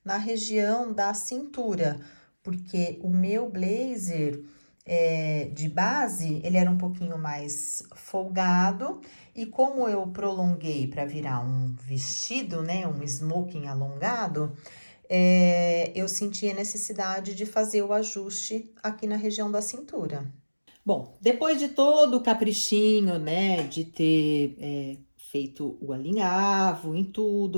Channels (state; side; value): inverted; both; correlation -1.00